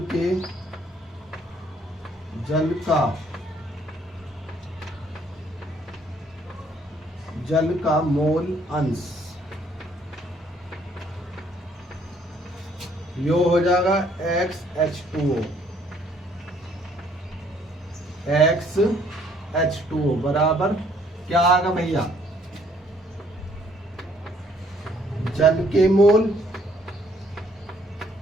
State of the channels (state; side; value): normal; both; correlation 0.64